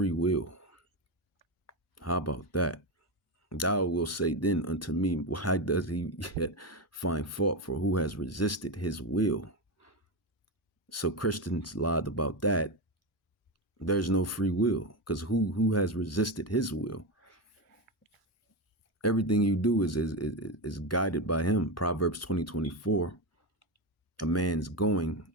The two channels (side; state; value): both; normal; correlation 0.15